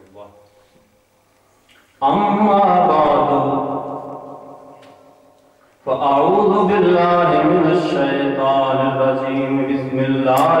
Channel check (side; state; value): both; identical; correlation 1.00